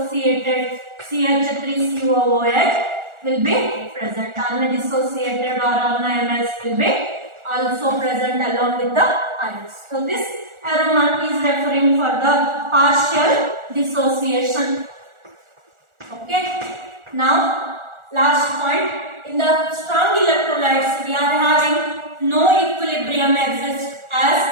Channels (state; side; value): late; left; 1.4 ms